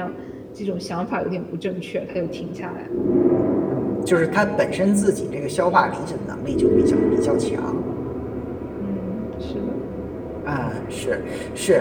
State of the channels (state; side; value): identical; both; correlation 1.00